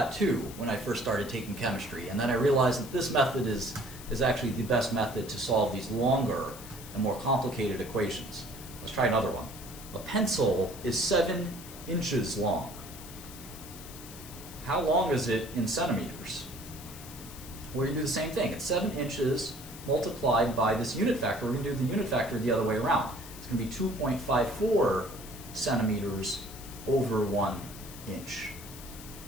too when I first started taking chemistry, and then I realized that this method is actually the best method to solve these longer and more complicated equations. Let's try another one. A pencil is 7 inches long. How long is it in centimeters? We're going to do the same thing. It's 7 inches multiplied by this unit factor. We're going to do the unit factor the other way around. It's going to be 2.54 centimeters over 1 inch.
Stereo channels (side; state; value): left; noise; hiss, 15 dB below the sound